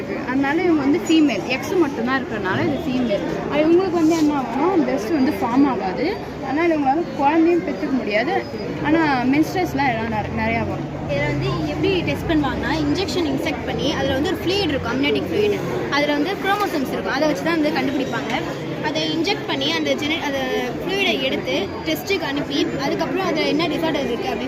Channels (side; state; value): both; identical; correlation 1.00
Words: அதனால இவங்க வந்து ஃபீமேல், எக்ஸ் மட்டும்தான் இருக்கிறனால இது ஃபீமேல். அது இவங்களுக்கு வந்து என்ன ஆகும்னா பிரெஸ்ட் வந்து ஃபார்ம் ஆகாது. அதனால் இவங்களால குழந்தையும் பெற்றுக்க முடியாது. ஆனால் மென்ஸ்ட்ரஸ்லாம் எல்லாம் நிறையா வரும். இதில் வந்து எப்படி டெஸ்ட் பண்ணுவாங்கன்னா இன்ஜெக்ஷன் இன்செக்ட் பண்ணி அதில் வந்து ஒரு ஃப்ளூயிட் இருக்கும், அம்னேட்டிக் ஃப்ளூயிட். அதில் வந்து குரோமோசோம்ஸ் இருக்கும், அதை வச்சு தான் வந்து கண்டுபிடிப்பாங்க. அதை இன்ஜெக்ட் பண்ணி அந்த ஃப்ளூயிடை எடுத்து டெஸ்ட்டுக்கு அனுப்பி அதுக்கப்புறம் அதில் என்ன டிசார்டர் இருக்குது